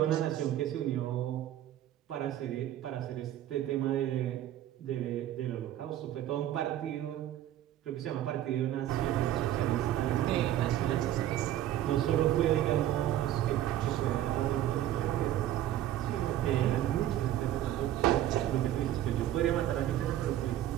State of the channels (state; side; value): quieter; left; 12.5 dB